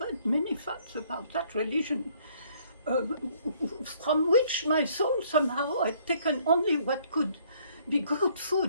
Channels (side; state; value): both; inverted; correlation -0.62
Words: many facts about that religion, from which my soul somehow had taken only what could be good